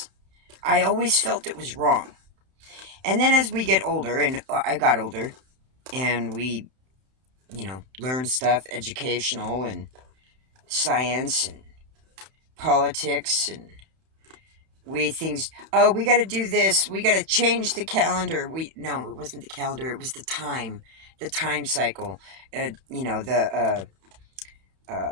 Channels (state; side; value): late; left; 31 ms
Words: I always felt it was wrong. And then as we get older, and I got older, and we, learn stuff, educational and science and politics, and we got to do this, we got to change the calendar. No, it wasn't the calendar, it was the time cycle. The